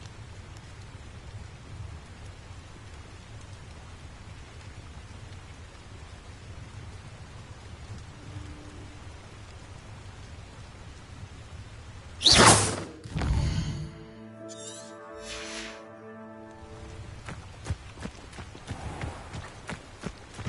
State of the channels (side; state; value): both; identical; correlation 1.00